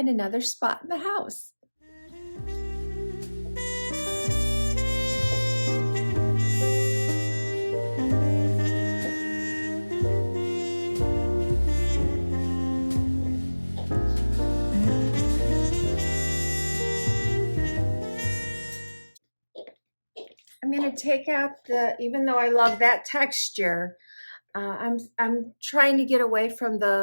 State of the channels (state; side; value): inverted; both; correlation -1.00